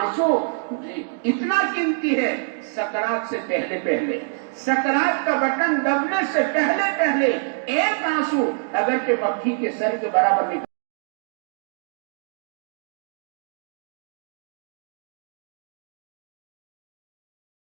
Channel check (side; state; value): left; silent; digital silence